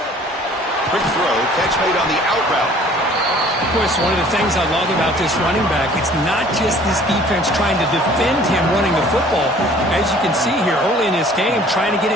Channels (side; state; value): both; normal; correlation 0.53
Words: Quick throw, catch made on the out route. Of course, one of the things I love about this running back, it's not just this defense trying to defend him running the football. As you can see here early in this game, trying to get